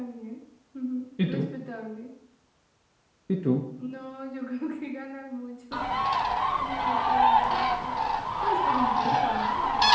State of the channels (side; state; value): both; identical; correlation 1.00